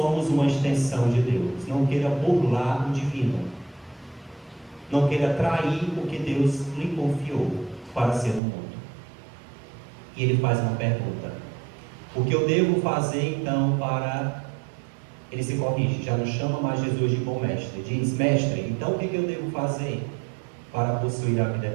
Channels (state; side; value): drops out; left; at 8.4 s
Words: uma extensão de Deus. Não queira burlar o divino. Não queira trair o que Deus lhe confiou para ser no mundo. E ele faz uma pergunta. O que eu devo fazer então para... Ele se corrige, já não chama mais Jesus de bom mestre. Diz, mestre, então o que eu devo fazer para possuir a vida